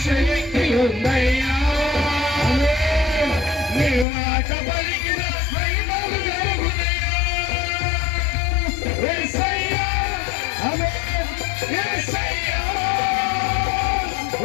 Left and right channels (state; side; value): drops out; right; at 4.0 s